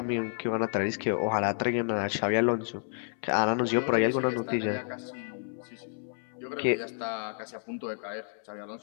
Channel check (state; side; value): silent; right; 58 dB below the other